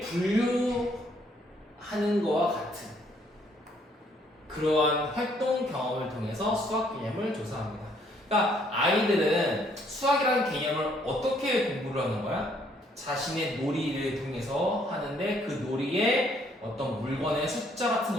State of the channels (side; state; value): both; normal; correlation 0.66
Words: 거와 같은 그러한 활동 경험을 통해서 수학 개념을 조사합니다. 그러니까 아이들은 수학이라는 개념을 어떻게 공부를 하는 거야? 자신의 놀이를 통해서 하는데 그 놀이에 어떤 물건의 숫자 같은